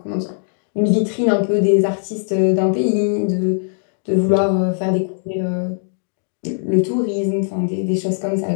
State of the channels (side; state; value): right; silent; digital silence